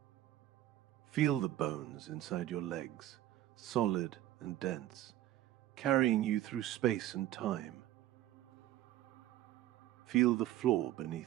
Feel the bones inside your legs, solid and dense, carrying you through space and time. Feel the floor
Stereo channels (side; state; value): left; quieter; 14.0 dB